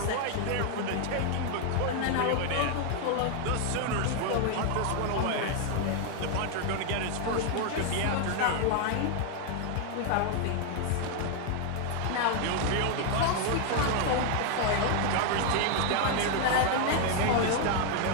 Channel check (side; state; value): both; different; correlation 0.00